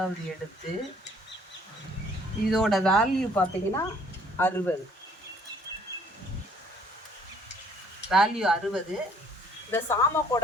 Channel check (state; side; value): normal; both; correlation 0.61